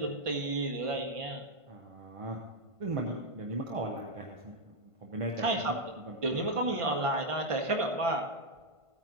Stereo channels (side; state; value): left; late; 1.5 ms